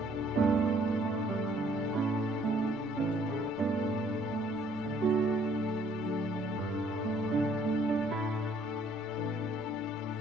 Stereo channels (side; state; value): right; noise; rumble, 25 dB below the sound